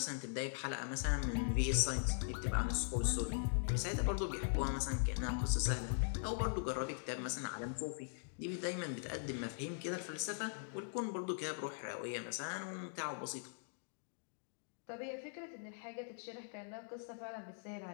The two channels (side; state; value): right; silent; digital silence